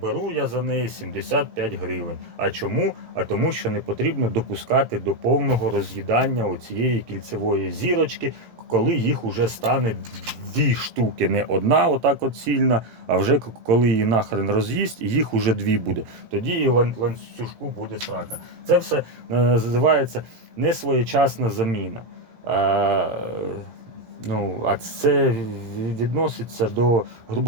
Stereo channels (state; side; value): late; left; 18 ms